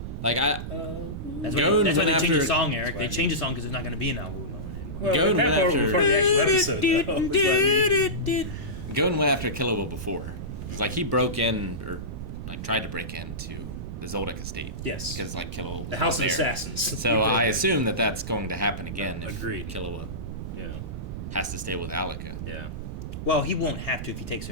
like That's Gon why they went changed the after- song, Eric. They That's changed the song because there's not going to be an Awu moment anymore. Well, Gon that went part after- before the actual episode, though, is what I mean. Gon went after Killua before. It's like he broke in, or like tried to break into the Zoldyck estate. Yes. Because like Killua was The House of there. Assassins. So I assume that that's going to happen again if Agreed. Killua Yeah. has to stay with Alika. Yeah. Well, he won't have to if he takes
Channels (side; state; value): right; noise; rumble, 7 dB below the sound